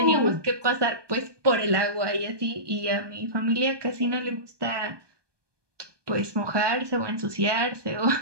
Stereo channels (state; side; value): late; left; 1.2 ms